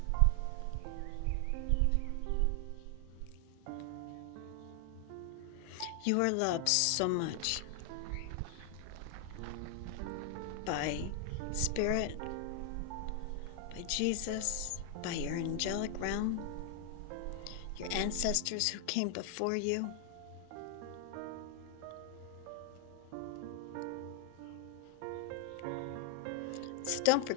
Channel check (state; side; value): different; both; correlation 0.00